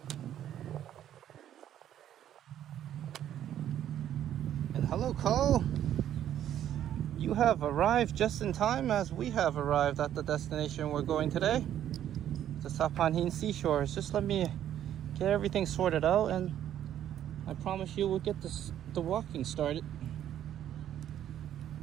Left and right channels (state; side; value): quieter; left; 11.0 dB